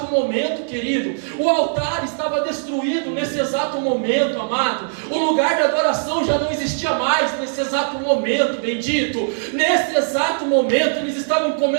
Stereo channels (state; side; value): silent; left; digital silence